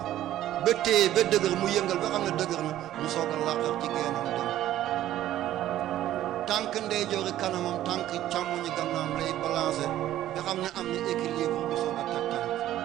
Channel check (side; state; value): left; quieter; 13.1 dB